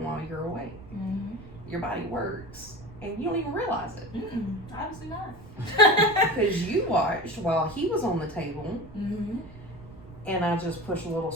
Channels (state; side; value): noise; right; rumble, 17 dB below the sound